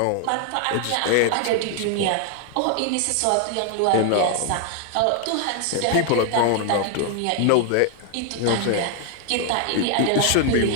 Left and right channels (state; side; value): different; both; correlation 0.00